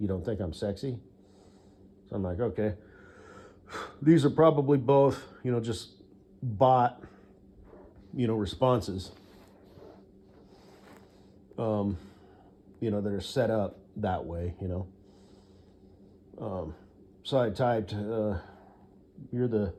don't think I'm sexy? So I'm like, okay. These are probably both, just bot, responses, that are set up that way, So I typed, you're the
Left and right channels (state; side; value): identical; both; correlation 1.00